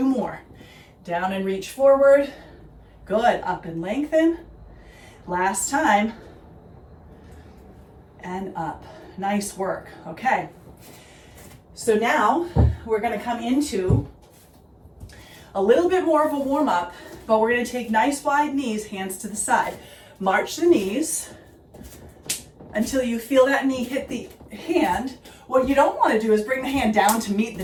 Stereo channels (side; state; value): both; identical; correlation 1.00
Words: more. Down and reach forward, good. Up and lengthen. Last time, and up. Nice work, okay. So now we're gonna come into a little bit more of a warm up, but we're gonna take nice wide knees, hands to the side. March the knees until you feel that knee hit the hand. What you don't want to do is bring the hand down to meet the